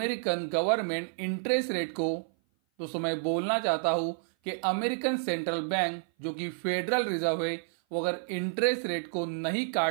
गवर्नमेंट इंटरेस्ट रेट को, दोस्तों मैं बोलना चाहता हूं कि अमेरिकन सेंट्रल बैंक जो कि फेडरल रिजर्व है, वो अगर इंटरेस्ट रेट को नहीं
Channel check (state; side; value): silent; left; 56 dB below the other